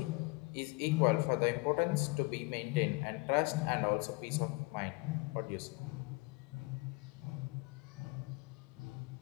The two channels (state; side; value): quieter; right; 27.3 dB